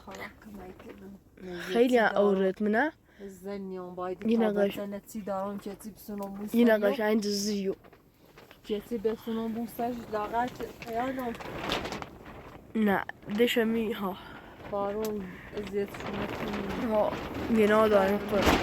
خیلی اورد منه زنیان باید یه تا نقاش بزنتی دارم چتی بسونم بوستن یه نقاش این زیو چتی بسونم بوستش لاغر خیانم نه دشمی ها بارون ازیتشونه کنیم ها گناه داریم خود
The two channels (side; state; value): both; identical; correlation 1.00